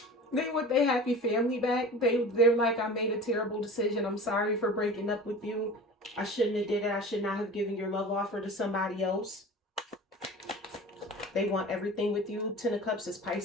They want their happy family back. They're like, I made a terrible decision. I'm sorry for breaking up with you. I shouldn't have did it. I should not have given your love offer to somebody else. They want everything with you. Ten of Cups is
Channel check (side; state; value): both; normal; correlation 0.36